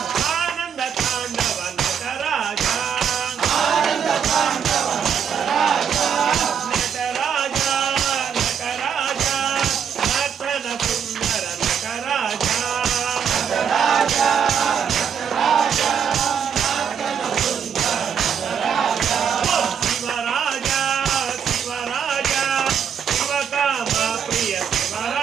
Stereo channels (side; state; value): left; quieter; 7.6 dB